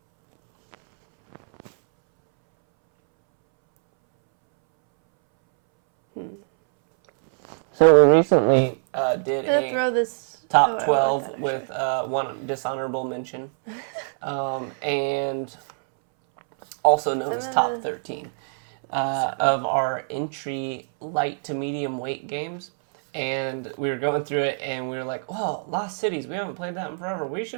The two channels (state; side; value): silent; left; 63 dB below the other